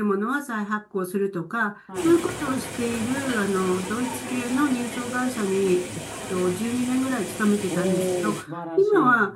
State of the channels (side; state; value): both; identical; correlation 1.00